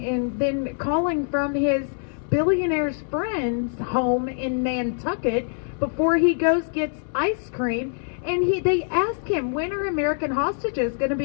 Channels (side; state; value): right; silent; 61 dB below the other